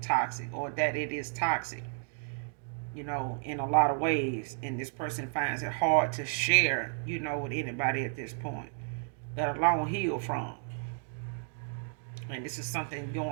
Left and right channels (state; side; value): silent; left; 56 dB below the other